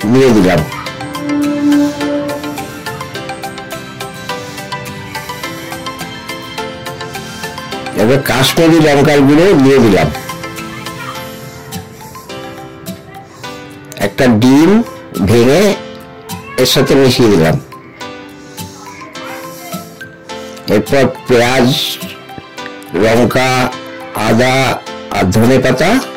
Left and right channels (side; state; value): both; identical; correlation 1.00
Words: দিয়ে দিলাম। এবার কাশ্মীরি লঙ্কার গুঁড়ো দিয়ে দিলাম। একটা ডিম ভেঙে এর সাথে মিশিয়ে দিলাম। এরপর পেঁয়াজ, লঙ্কা, আদা আর ধনে পাতা